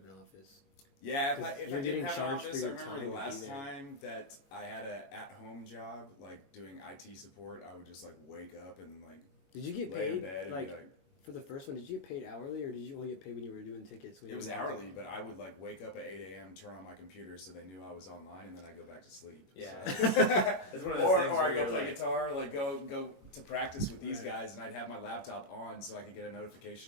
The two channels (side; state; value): right; late; 22 ms